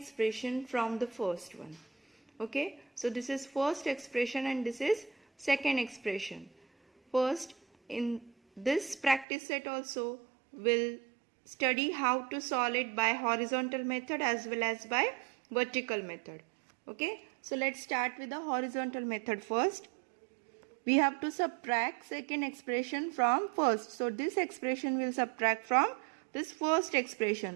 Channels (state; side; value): drops out; left; at 9.2 s